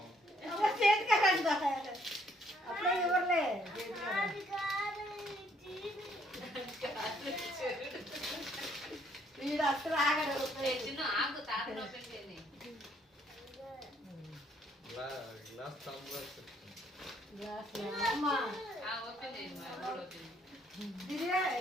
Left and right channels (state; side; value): normal; both; correlation 0.68